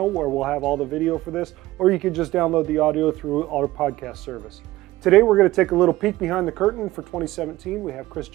where we'll have all the video for this, or you can just download the audio through our podcast service. Today we're going to take a little peek behind the curtain for 2017. We have Chris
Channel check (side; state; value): left; quieter; 17.3 dB